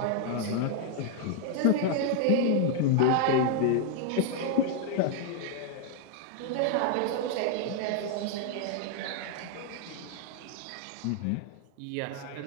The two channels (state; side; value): different; both; correlation -0.01